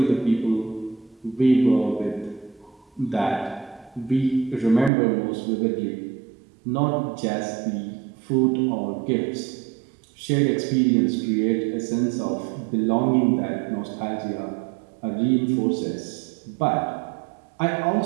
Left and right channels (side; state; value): left; drops out; at 4.9 s